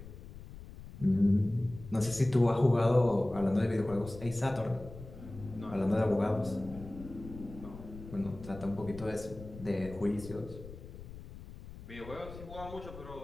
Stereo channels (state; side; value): noise; left; rumble, 14 dB below the sound